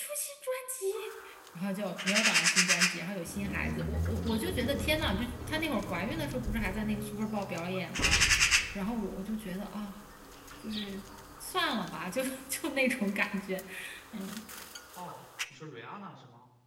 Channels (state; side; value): identical; both; correlation 1.00